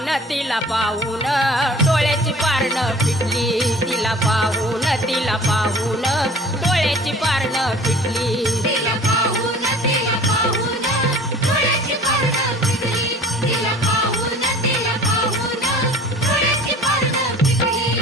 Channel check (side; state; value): both; normal; correlation 0.46